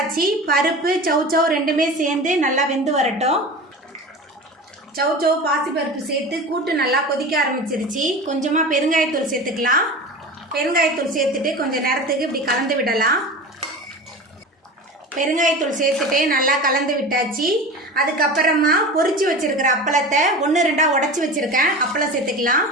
பருப்பு சௌச்சௌ ரெண்டுமே சேர்ந்து நல்லா வெந்து வரட்டும். சௌச்சௌ பாசிப்பருப்பு சேர்த்து கூட்டு நல்லா கொதிக்க ஆரம்பிச்சிருச்சு. கொஞ்சமாக பெருங்காயத்தூள் சேர்த்துக்கலாம். பெருங்காயத்தூள் சேர்த்துட்டு கொஞ்சம் நேரத்துக்கு இப்படி கலந்து விடலாம். பெருங்காயத்தூள் சேர்த்துட்டு நல்லா கலந்து விட்டாச்சு. அதுக்கப்புறமா பொரிச்சு வச்சுருக்கிற அப்பளத்தை 1-2 உடச்சி வச்சுருக்கேன். அப்பளம் சேர்த்துக்கலாம்.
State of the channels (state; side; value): normal; both; correlation 0.32